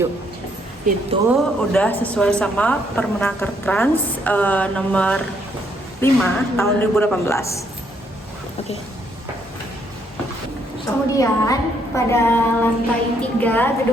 Itu udah sesuai sama Permenaker Trans nomor 5 tahun 2018. Oke. Kemudian pada lantai 3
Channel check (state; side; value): normal; both; correlation 0.71